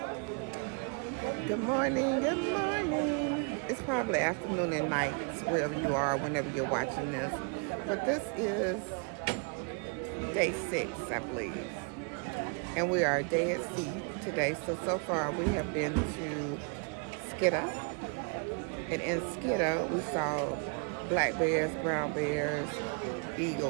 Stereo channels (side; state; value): left; quieter; 36.8 dB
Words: Good morning. It's probably afternoon and night, wherever you are, whenever you're watching this. But this is day 6, I believe. And we are a day at sea today. So far we have been to Skidda. And in Skidda, we saw black bears, brown bears,